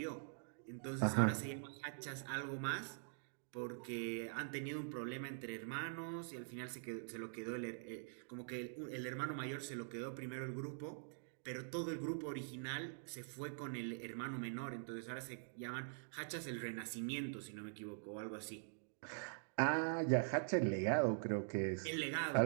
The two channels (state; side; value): silent; left; digital silence